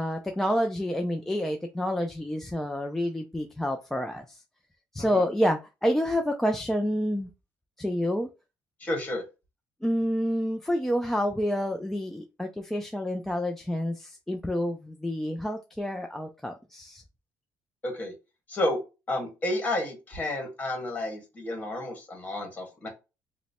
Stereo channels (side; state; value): both; normal; correlation 0.87